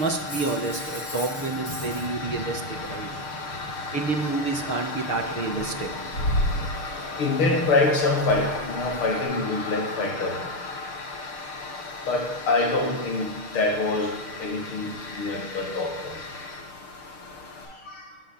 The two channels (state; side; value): late; right; 6.6 ms